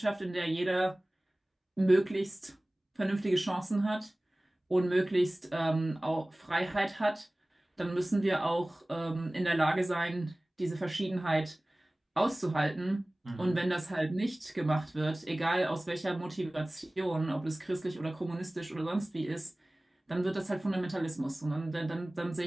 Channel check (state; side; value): normal; both; correlation 0.98